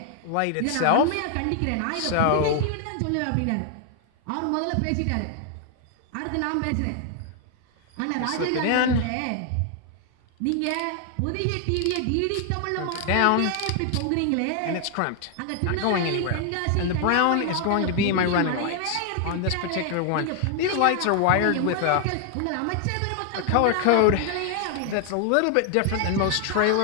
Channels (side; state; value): both; different; correlation 0.00